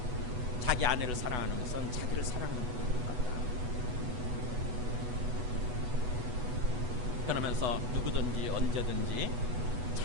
자기 아내를 사랑하는 것은 자기를 사랑하는 것 같다. 그러면서 누구든지 언제든지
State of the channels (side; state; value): left; late; 8.1 ms